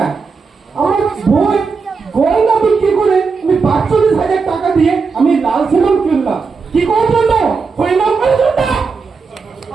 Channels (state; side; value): quieter; left; 4.9 dB